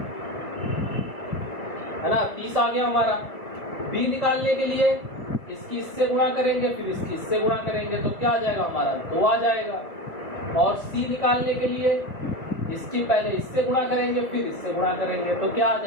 है ना, 30 आ गया हमारा। B निकालने के लिए इसकी इससे गुणा करेंगे, फिर इसकी इससे गुणा करेंगे, तो क्या आ जाएगा हमारा 2 आ जाएगा। और C निकालने के लिए इसकी पहले इससे गुणा करेंगे, फिर इससे गुणा करेंगे, तो क्या आ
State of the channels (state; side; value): late; right; 2.1 ms